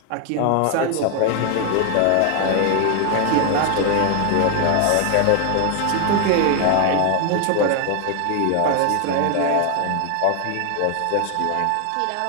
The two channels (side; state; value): both; different; correlation 0.01